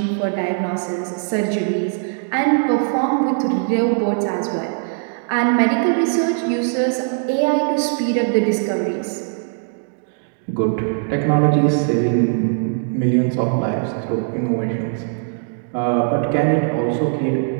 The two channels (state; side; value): silent; left; digital silence